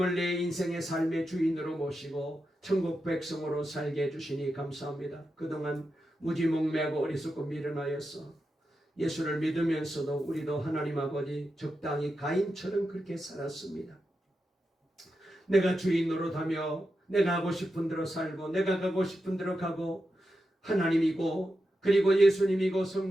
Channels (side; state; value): both; normal; correlation 0.89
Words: 내 인생의 삶의 주인으로 모시고 천국 백성으로 살게 해주시니 감사합니다. 그동안 무지몽매하고 어리석고 미련하여서 예수를 믿으면서도 우리도 하나님 아버지 적당히 가인처럼 그렇게 살았습니다. 내가 주인 노릇하며 내가 하고 싶은 대로 살고 내가 가고 싶은 대로 가고 하나님이고 그리고 예수님이고